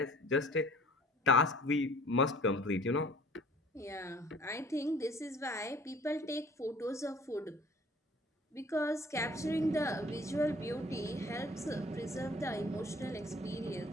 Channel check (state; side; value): normal; both; correlation 0.51